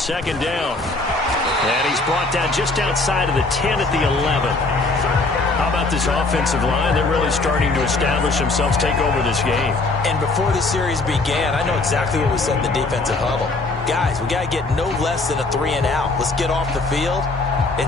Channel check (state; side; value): quieter; right; 3.3 dB